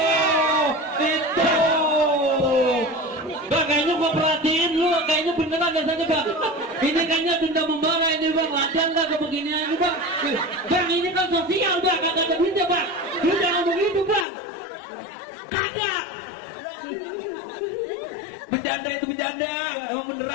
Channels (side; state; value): right; drops out; at 14.2 s